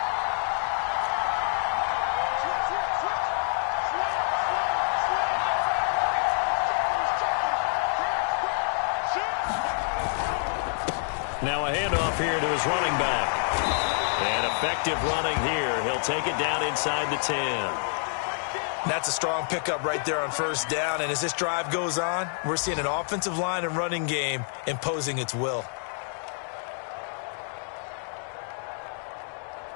Now a handoff here to his running back. And effective running here. He'll take it down inside the 10. That's a strong pickup right there on 1st down. And as this drive goes on, we're seeing an offensive line and running game imposing its will.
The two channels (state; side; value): silent; right; 60 dB below the other